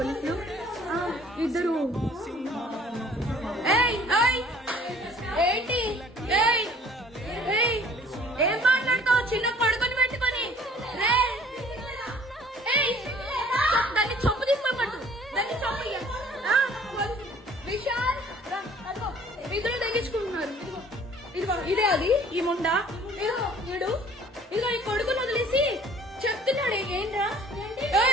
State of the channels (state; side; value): normal; both; correlation 0.54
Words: ఇద్దరు. ఏంటి ఏం మాట్లాడతావు? చిన్న పడుకొని పెట్టుకొని దాన్ని చొప్పు తీసుకోమంటు దాన్ని చొప్పు. విశాల్ ఇద్దరు తగ్గించుకుంటున్నారు. ఇదిగో ఇదే అది ఈ ముండా. ఇదిగో ఈ కొడుకుని వదిలేసి చెప్తున్నాడు ఏంట్రా